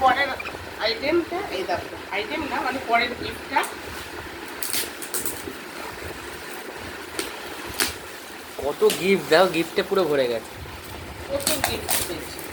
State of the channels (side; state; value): both; identical; correlation 1.00